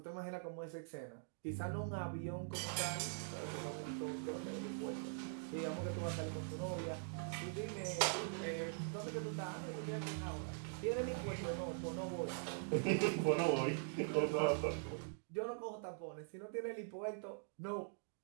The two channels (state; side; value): silent; left; digital silence